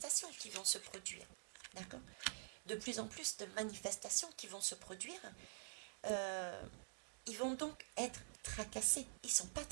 qui vont se produire. D'accord? De plus en plus de manifestations qui vont se produire. Ils vont donc être tracassés. Ils ne sont pas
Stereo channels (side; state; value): left; silent; digital silence